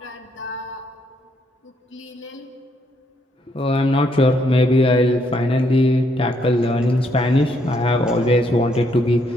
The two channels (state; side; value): normal; both; correlation 0.73